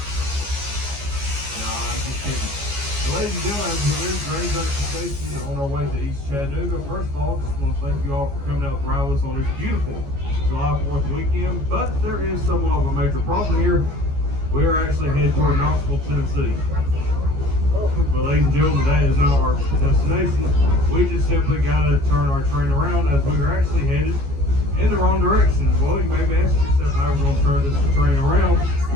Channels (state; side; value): late; left; 14 ms